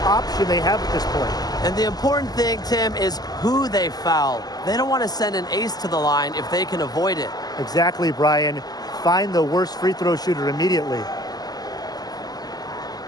they have at this point. And the important thing, Tim, is who they foul. They don't want to send an ace to the line if they can avoid it. Exactly, Brian. Find the worst free throw shooter immediately.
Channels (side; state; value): right; late; 0.19 ms